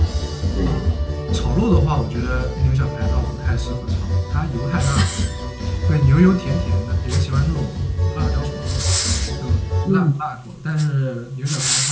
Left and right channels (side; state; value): both; identical; correlation 1.00